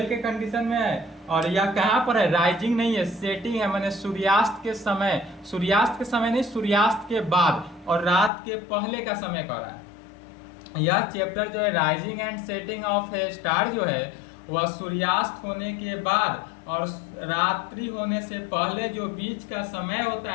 के कंडीशन में है और यह कहाँ पर है, राइजिंग नहीं है, सेटिंग है, मैंने सूर्यास्त के समय, सूर्यास्त के समय नहीं, सूर्यास्त के बाद और रात के पहले का समय कर रहा है। यह चैप्टर जो है rising and setting of a star जो है वह सूर्यास्त होने के बाद और रात्रि होने से पहले जो बीच का समय होता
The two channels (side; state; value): right; drops out; at 8.3 s